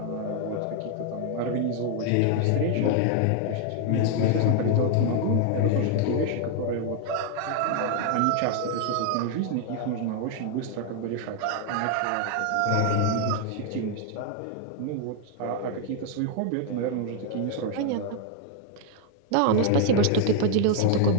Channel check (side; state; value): both; different; correlation 0.00